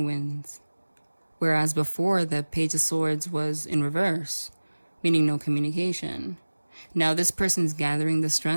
winds. Whereas before, the Page of Swords was in reverse, meaning no communication. Now this person's gathering the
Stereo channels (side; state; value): both; inverted; correlation -1.00